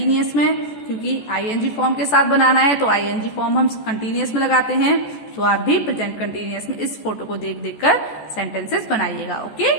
में, क्योंकि आईएनजी फॉर्म के साथ बनाना है। तो आईएनजी फॉर्म हम कंटिन्यूअस में लगाते हैं, तो आप भी प्रेजेंट कंटिन्यूअस में इस फोटो को देख देख कर सेंटेंसेस बनाइएगा। ओके,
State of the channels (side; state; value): right; late; 14 ms